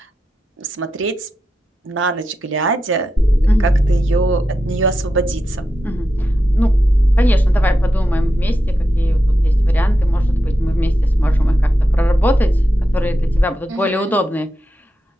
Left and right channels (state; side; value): normal; both; correlation 0.89